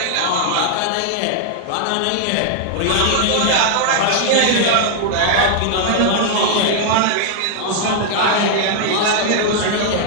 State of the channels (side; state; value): both; different; correlation 0.00